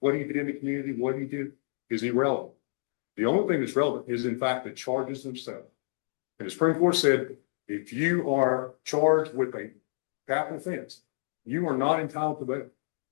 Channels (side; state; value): right; silent; digital silence